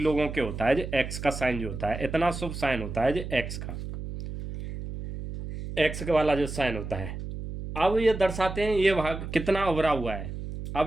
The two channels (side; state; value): right; noise; hum, 8 dB below the sound